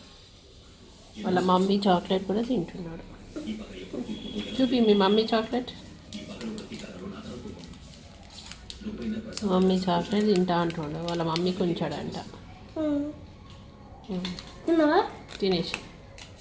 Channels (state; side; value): identical; both; correlation 1.00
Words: వాళ్ళ మమ్మీ చాక్లెట్ కూడా తింటున్నాడు. చూపి మీ మమ్మీ చాక్లెట్. మమ్మీ చాక్లెట్ తింటా అంటుండే. వాళ్ళ మమ్మీకి ఉంచాడంట. తినేసి